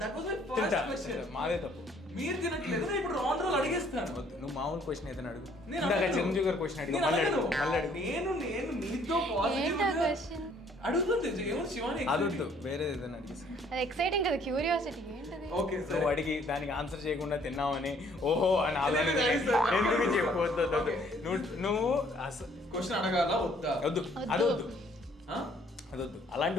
That was my first question. మాదే తప్పు. మీరు తినట్లేదు, నేను ఇప్పుడు రాంగ్ రోల్ అడిగేస్తాను. వద్దు, నువ్వు మామూలు క్వశ్చన్ ఏదైనా అడుగు. నేను ఇందాక చిరంజీవి గారు క్వశ్చన్ అడిగి మళ్ళీ అడుగు. నేను మీతో ఏంటా క్వశ్చన్ అడుగుతుంది ఏమో శివాని. అదొద్దు, వేరే ఏదైనా అడిగేసి. అది ఎక్సైటింగ్ కదా, క్యూరియాసిటీ ఏంటది. ఓకే సార్, నువ్వు అడిగి దానికి ఆన్సర్ చేయకుండా తిన్నావని ఓహో అని ఆలోచన ఎందుకు చెప్పవద్దు. నువ్వు క్వశ్చన్ అడగాల వద్దా? వద్దు, అదొద్దు, అలాంటి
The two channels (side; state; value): both; normal; correlation 0.62